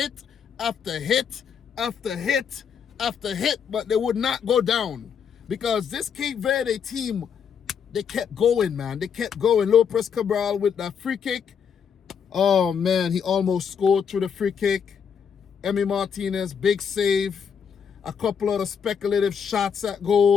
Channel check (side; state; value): right; quieter; 7.2 dB